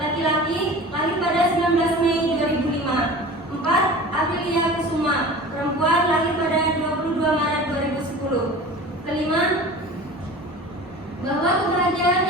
laki-laki, lahir pada 19 Mei 2005. 4. Aprilia Kusuma, perempuan, lahir pada 22 Maret 2010. Kelima, bahwa kebahagiaan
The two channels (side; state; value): both; normal; correlation 0.38